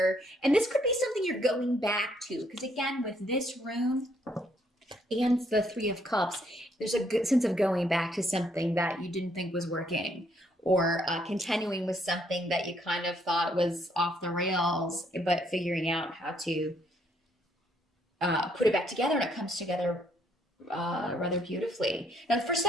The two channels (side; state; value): both; normal; correlation 0.70